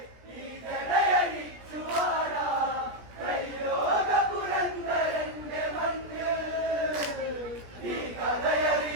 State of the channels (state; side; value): late; left; 17 ms